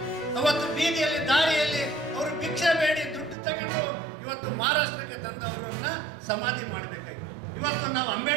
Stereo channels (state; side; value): drops out; left; at 3.4 s